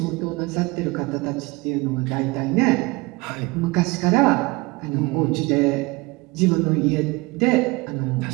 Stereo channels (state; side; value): quieter; left; 23.9 dB